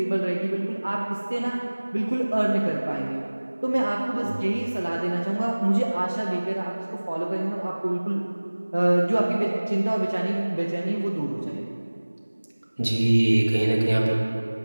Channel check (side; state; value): both; inverted; correlation -1.00